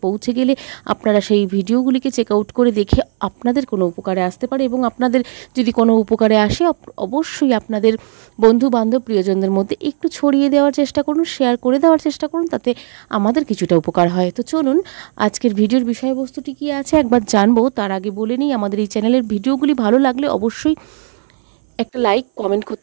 পৌঁছে গেলে আপনারা সেই ভিডিওগুলিকে চেক আউট করে দেখে আপনাদের কোনো উপকারে আসতে পারে এবং আপনাদের যদি কোনো উপকারে আসে অবশ্যই আপনাদের বন্ধু বান্ধব প্রিয়জনদের মধ্যে একটু ছড়িয়ে দেওয়ার চেষ্টা করুন, শেয়ার করে দেওয়ার চেষ্টা করুন, তাতে আমাদের কিছুটা উপকার হয়। তো চলুন আজকের ভিডিওর বিষয়বস্তুটি কী আছে একবার জানবো। তার আগে বলে নিই, আমাদের এই চ্যানেলের ভিডিওগুলি ভালো লাগলে অবশ্যই একটা লাইক কমেন্ট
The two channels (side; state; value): left; silent; 59 dB below the other